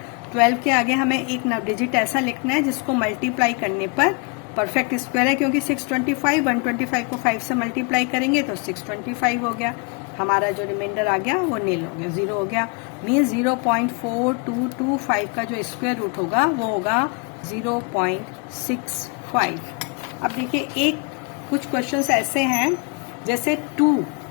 12 के आगे हमें एक डिजिट ऐसा लिखना है जिसको मल्टीप्लाई करने पर परफेक्ट स्क्वायर है, क्योंकि 625 125 को 5 से मल्टीप्लाई करेंगे तो 625 हो गया। हमारा जो रिमाइंडर आ गया वो नील हो गया, 0 हो गया। मीन्स 0.4225 का जो स्क्वायर रूट होगा वो होगा 0.65। अब देखिए एक कुछ क्वेश्चंस ऐसे हैं जैसे 2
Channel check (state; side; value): quieter; right; 32.1 dB